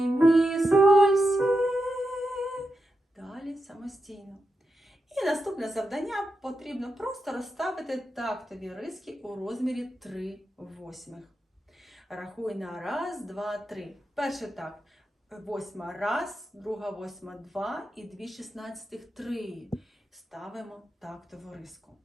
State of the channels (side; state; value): both; normal; correlation 0.87